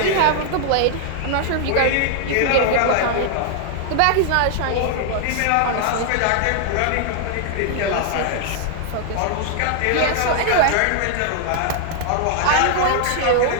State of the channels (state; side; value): different; both; correlation 0.00